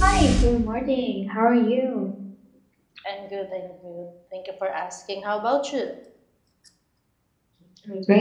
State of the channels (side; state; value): both; identical; correlation 1.00